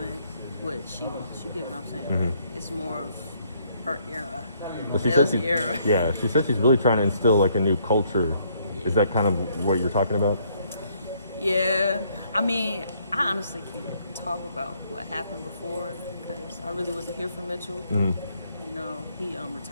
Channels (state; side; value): inverted; both; correlation -0.68